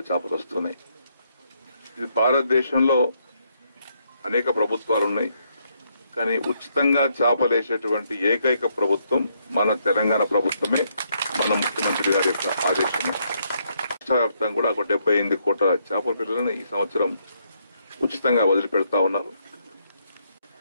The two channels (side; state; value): both; inverted; correlation -0.74